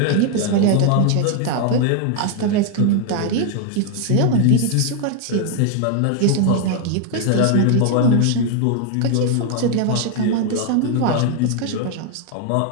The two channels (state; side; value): different; both; correlation 0.00